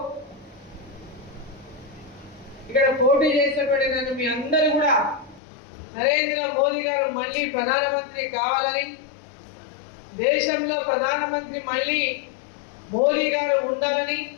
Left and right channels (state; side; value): drops out; right; at 5.4 s